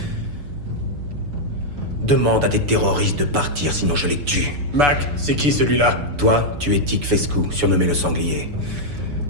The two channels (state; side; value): late; left; 6.9 ms